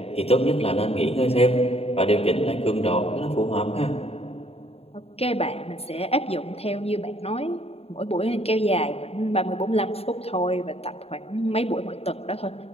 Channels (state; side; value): late; right; 0.29 ms